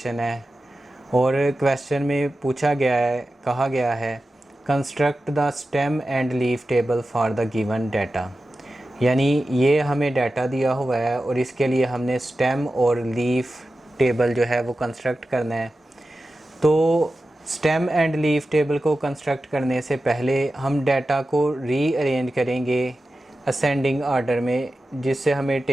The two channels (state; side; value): normal; both; correlation 0.93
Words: है। और क्वेश्चन में पूछा गया है, कहा गया है construct the stem and leaf table for the given data. यानी ये हमें डाटा दिया हुआ है और इसके लिए हमने स्टेम और लीफ टेबल जो है वो कंस्ट्रक्ट करना है। तो स्टेम एंड लीफ टेबल को कंस्ट्रक्ट करने से पहले हम डाटा को रीअरेंज करेंगे असेंडिंग ऑर्डर में, जिससे हमें